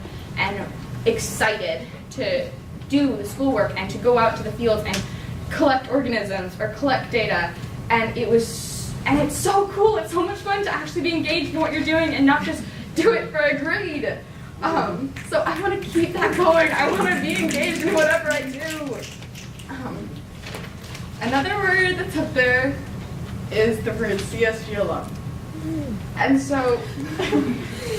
and excited to do the schoolwork and to go out to the fields and collect organisms or collect data. And it's so cool. It's so much fun to actually be engaged in what you're doing and not just do it for a grade. So I want to keep that going. I want to be engaged in whatever I do. Another word that's up there is the word CSG alum. And so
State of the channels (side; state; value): both; identical; correlation 1.00